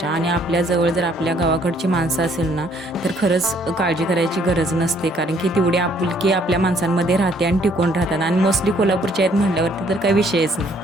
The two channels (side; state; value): both; normal; correlation 0.64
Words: आणि आपल्याजवळ जर आपल्या गावाकडची माणसं असेल ना तर खरंच काळजी करायची गरज नसते, कारण की तेवढी आपुलकी आपल्या माणसांमध्ये राहते आणि टिकून राहतात. आणि मोस्टली कोल्हापूरच्या आहेत म्हटल्यावरती तर काही विषयच नाही.